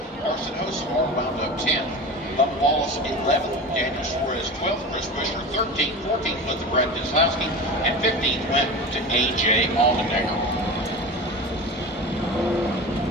Carson Hosemar wound up 10th, Bubba Wallace 11th, Daniel Suarez 12th, Chris Buescher 13th, 14th went to Brett Keselowski, and 15th went to A.J. Allmendinger.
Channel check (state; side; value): normal; both; correlation 0.31